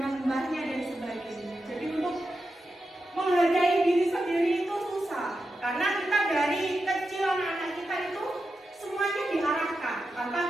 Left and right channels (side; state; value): both; normal; correlation 0.89